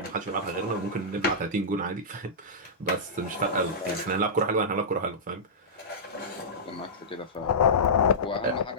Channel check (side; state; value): both; normal; correlation -0.14